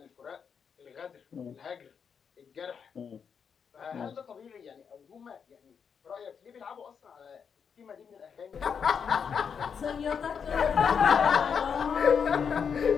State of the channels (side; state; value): right; quieter; 6.7 dB